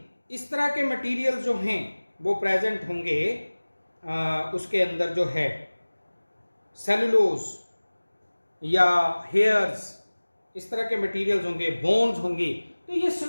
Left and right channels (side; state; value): both; inverted; correlation -1.00